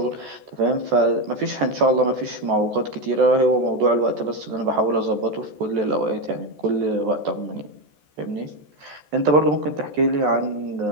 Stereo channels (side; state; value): left; late; 14 ms